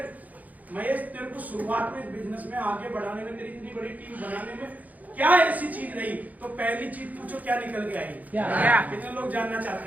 महेश तेरे को शुरुआत में बिजनेस में आगे बढ़ाने में, तेरी इतनी बड़ी टीम बनाने में क्या ऐसी चीज रही। तो पहली चीज पूछो, क्या निकल के आई? कितने लोग जानना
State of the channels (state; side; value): late; left; 0.078 ms